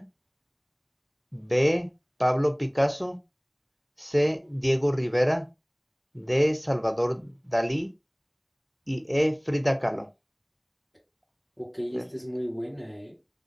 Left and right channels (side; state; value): both; identical; correlation 1.00